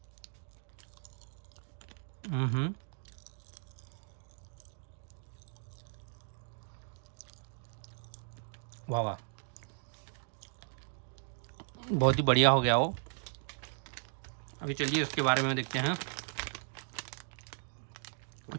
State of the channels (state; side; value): silent; left; digital silence